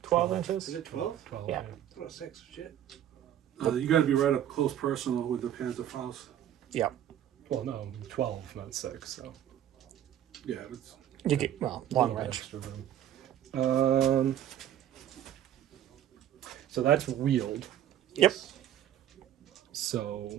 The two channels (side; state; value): left; quieter; 11.0 dB